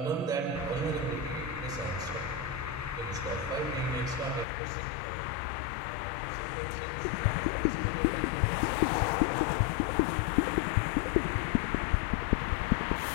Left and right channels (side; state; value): right; drops out; at 4.5 s